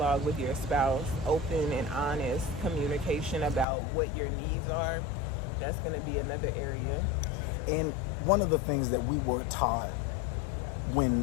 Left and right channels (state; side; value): drops out; right; at 3.7 s